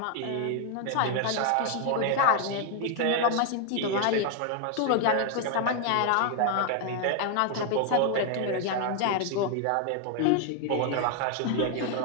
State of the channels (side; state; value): both; different; correlation 0.00